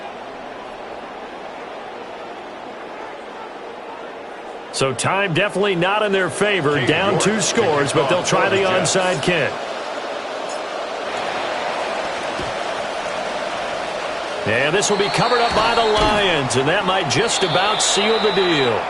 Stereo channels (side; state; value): both; identical; correlation 1.00